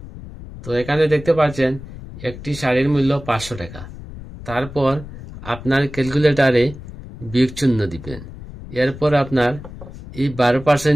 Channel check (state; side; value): noise; left; rumble, 14 dB below the sound